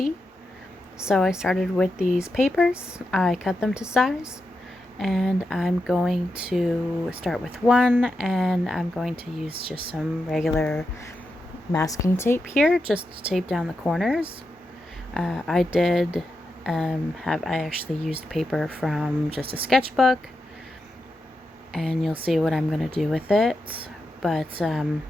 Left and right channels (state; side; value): normal; both; correlation 0.87